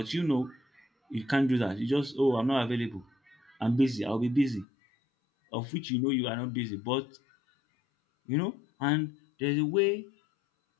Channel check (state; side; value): drops out; right; at 4.7 s